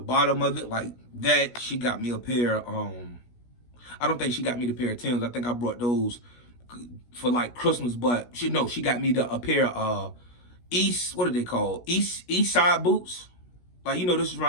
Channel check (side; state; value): right; late; 17 ms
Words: of it, like that. She got me a pair. I don't think she got me the pair of Timbs. I think I brought those for like Christmas, but she got me a pair of what are they called? East side boots. Like, you know, this is